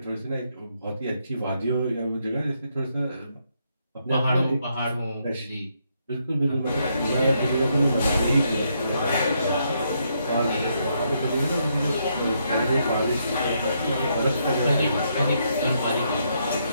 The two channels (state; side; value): inverted; both; correlation -0.76